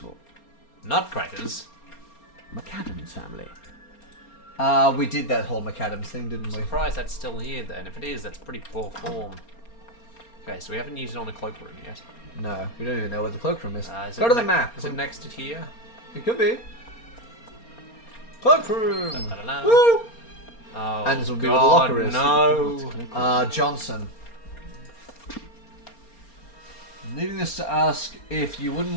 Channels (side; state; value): right; late; 4.3 ms